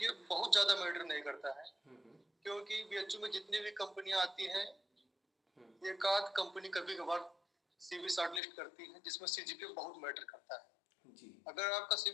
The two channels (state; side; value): drops out; right; at 8.4 s